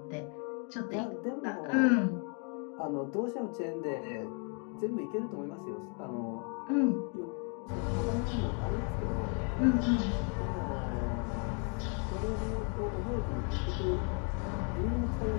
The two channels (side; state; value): right; quieter; 38.5 dB